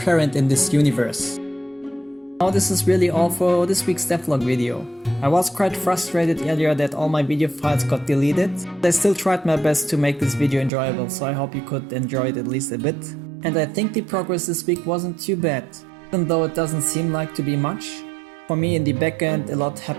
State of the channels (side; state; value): left; drops out; at 10.7 s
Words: in this universe. Now this is really all for this week's devlog video. I was quite frustrated earlier that all my video files got deleted. I still tried my best to make this video enjoyable, so I hope you could enjoy it at least a bit. And I think the progress this week wasn't too bad, even though it doesn't seem like to be much. For me in the backend a lot